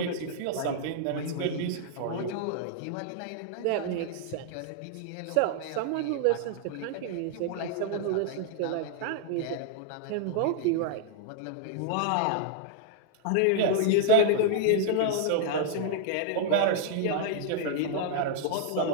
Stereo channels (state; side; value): different; both; correlation -0.01